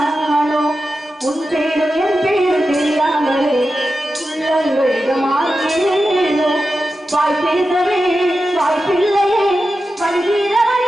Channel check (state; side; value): normal; both; correlation 0.91